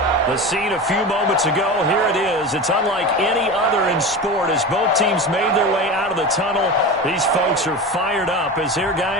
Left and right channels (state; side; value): normal; both; correlation 0.28